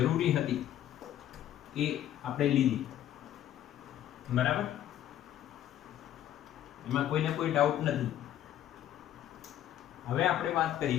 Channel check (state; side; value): quieter; right; 11.7 dB